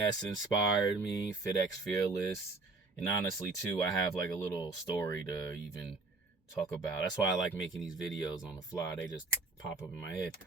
inspired me, FitX Fearless, and honestly, too, I have like a little story to even talk about. That's why I like making these videos on the fly. They just pop up in my head.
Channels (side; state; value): left; quieter; 3.5 dB